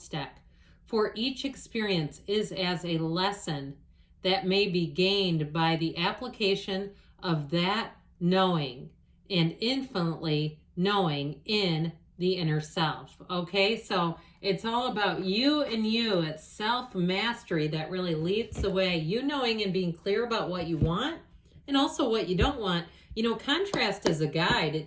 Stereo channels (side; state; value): both; identical; correlation 1.00